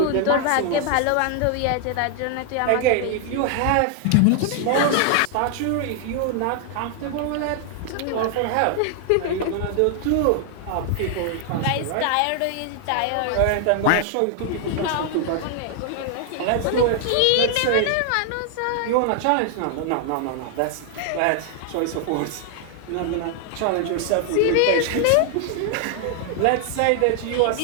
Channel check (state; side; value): different; both; correlation 0.00